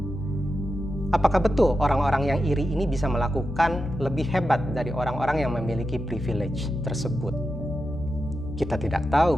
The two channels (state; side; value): noise; left; hum, 10 dB below the sound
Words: Apakah betul orang-orang yang iri ini bisa melakukan lebih hebat dari orang-orang yang memiliki privilege tersebut? Kita tidak